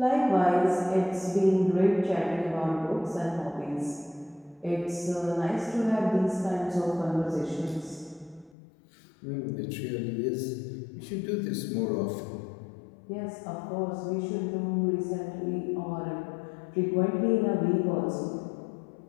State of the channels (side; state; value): right; drops out; at 8.6 s